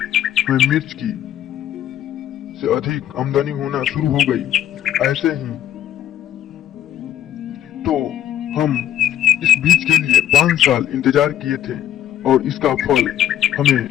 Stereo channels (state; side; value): quieter; right; 11.4 dB